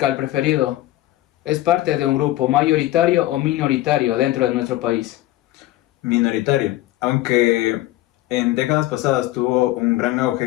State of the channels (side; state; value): right; quieter; 16.0 dB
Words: preferido es parte de un grupo mayoritario o minoritario dentro de nuestro país? Minoritario, aunque en décadas pasadas tuvo un gran